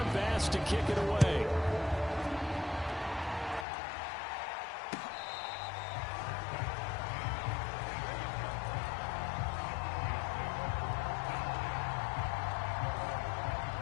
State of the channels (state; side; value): drops out; right; at 3.7 s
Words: Bass to kick it away.